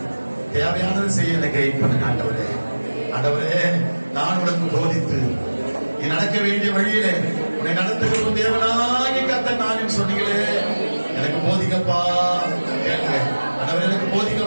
தேவையானதை செய்ய எனக்கு கைட் பண்ணுங்க ஆண்டவரே. ஆண்டவரே நான் உனக்கு போதித்து நீ நடக்க வேண்டிய வழியிலே உன்னை நடத்துகிறோம் தேவனாகி கர்த்தர் நான் சொன்னீங்களே, எனக்கு போதிக்கப்பா. கேளுங்க ஆண்டவரே, எனக்கு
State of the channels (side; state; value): both; inverted; correlation -1.00